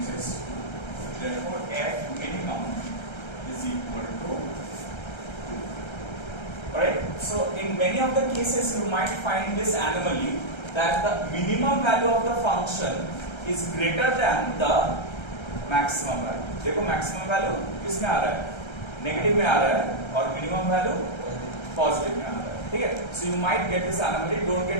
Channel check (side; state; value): right; late; 1.3 ms